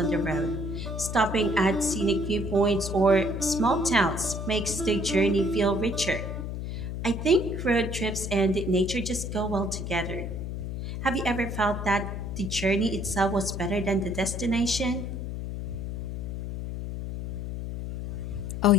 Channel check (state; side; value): noise; left; hum, 5 dB below the sound